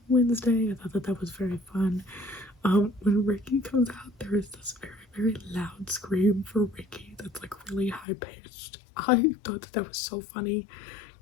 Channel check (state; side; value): drops out; right; at 8.1 s